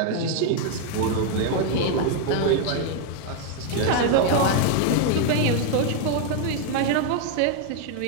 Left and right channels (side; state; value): both; different; correlation 0.01